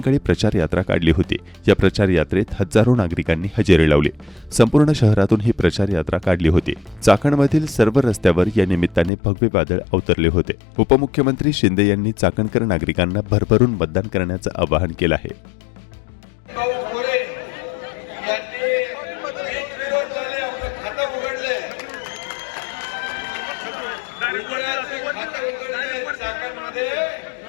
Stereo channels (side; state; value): right; drops out; at 9.1 s